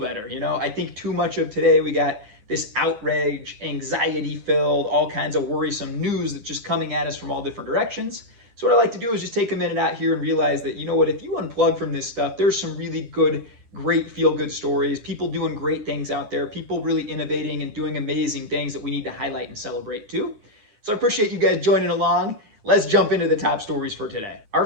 You know, I think too much of today, we got this outrage, anxiety-filled, all kinds of worrisome news that's just coming at us from all different directions. So what I like to do is just take a minute out here and realize that, you know what, if you unplug from this stuff, there's some really good, great feel-good stories, people doing great things out there, people really innovating and doing amazing things that we need to highlight and celebrate too. So I appreciate you guys joining along. Let's jump into the top stories for today. Our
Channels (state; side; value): late; left; 9.8 ms